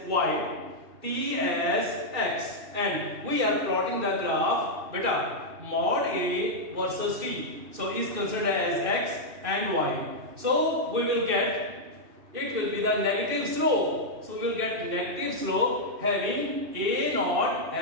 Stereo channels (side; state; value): left; late; 2.6 ms